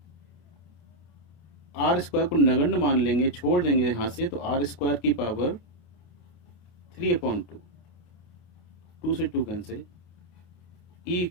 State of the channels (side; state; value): right; late; 28 ms